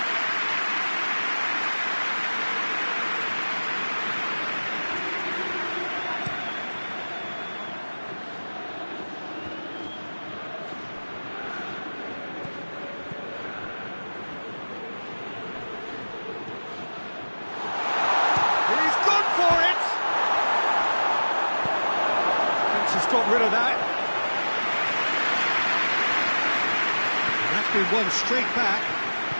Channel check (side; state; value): both; inverted; correlation -1.00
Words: He's gone for it! Fence has got rid of that. And that's been won straight back.